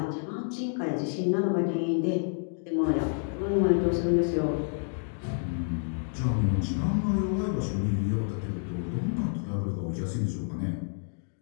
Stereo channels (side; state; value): right; silent; 59 dB below the other